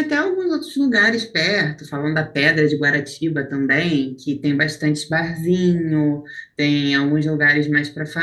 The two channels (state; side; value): identical; both; correlation 1.00